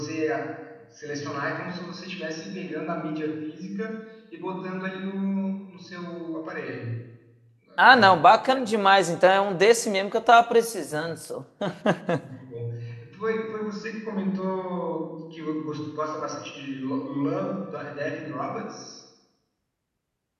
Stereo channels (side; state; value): both; identical; correlation 1.00